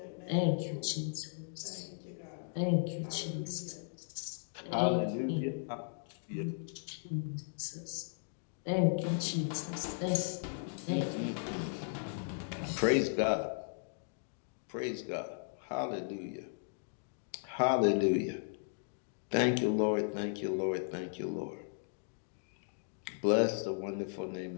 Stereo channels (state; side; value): silent; right; digital silence